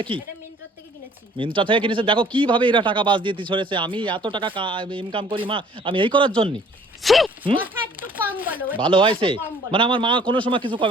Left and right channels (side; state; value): both; normal; correlation 0.55